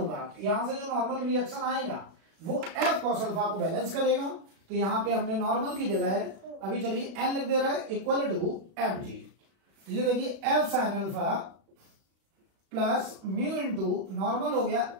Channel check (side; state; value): left; late; 36 ms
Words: यहां से जो नॉर्मल रिएक्शन आएगा वो f cos अल्फा को बैलेंस करेगा। तो यहां पे हमने नॉर्मल की जगह है, अभी चलिए n लिख दे रहा है, इक्वल टू mg। ये देखिए f sin alpha plus mu into normal हो गया